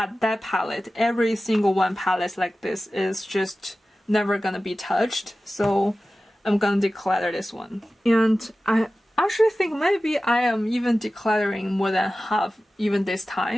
that palette, every single one palette like this is just never gonna be touched. So I'm gonna declutter this one. And I actually think maybe I am even decluttering more than half even this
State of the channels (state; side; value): normal; both; correlation 0.95